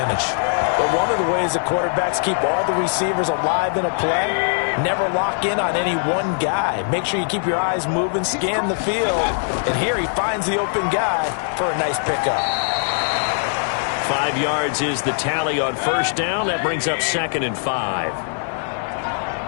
But one of the ways the quarterbacks keep all the receivers alive in a play, never lock in on any one guy. Make sure you keep your eyes moving, scan the field, and here he finds the open guy for a nice pickup. 5 yards is the tally on 1st down. That brings up 2nd and 5.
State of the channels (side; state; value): right; silent; 61 dB below the other